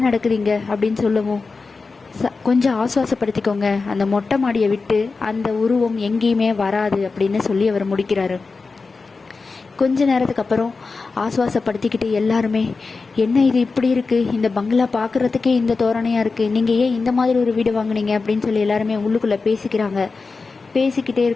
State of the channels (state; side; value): quieter; right; 4.2 dB